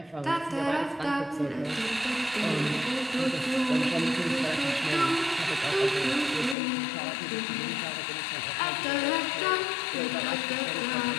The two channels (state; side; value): drops out; right; at 6.6 s